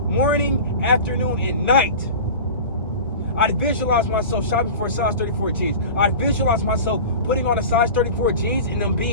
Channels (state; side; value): inverted; both; correlation -0.34